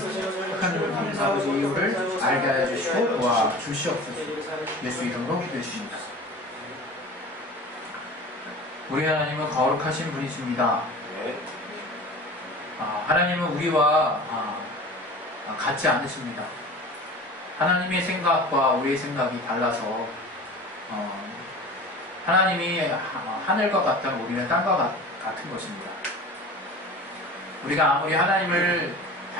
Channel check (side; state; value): both; normal; correlation 0.38